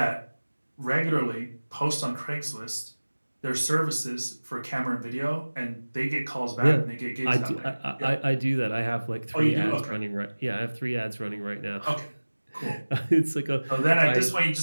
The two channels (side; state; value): both; inverted; correlation -1.00